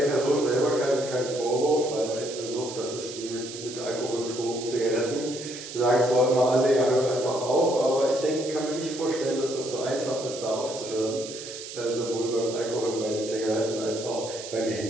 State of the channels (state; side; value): noise; right; hiss, 11 dB below the sound